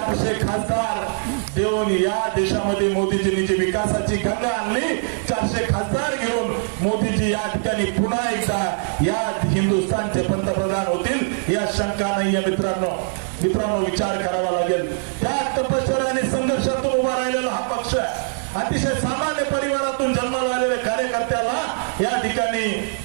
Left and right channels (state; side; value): silent; left; digital silence